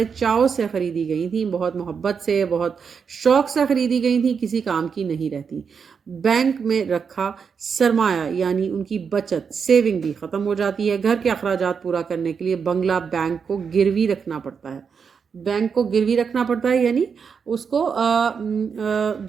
چاؤ سے خریدی گئی تھیں، بہت محبت سے، بہت شوق سے خریدی گئی تھیں، کسی کام کی نہیں رہتی۔ بینک میں رکھا سرمایہ یعنی ان کی بچت، سیونگ بھی ختم ہو جاتی ہے۔ گھر کے اخراجات پورا کرنے کے لیے بنگلہ بینک کو گروی رکھنا پڑتا ہے۔ بینک کو گروی رکھنا پڑتا ہے یعنی اس کو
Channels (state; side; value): quieter; left; 6.2 dB